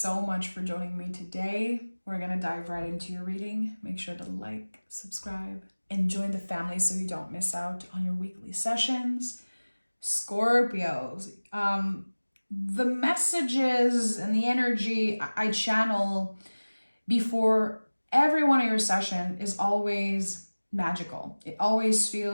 much for joining me today. We're going to dive right into your reading. Make sure to like, subscribe, and join the family so you don't miss out on your weekly sessions. Scorpios, the messages and the energy I channel before every one of your session is always magical. It always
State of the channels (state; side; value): inverted; both; correlation -1.00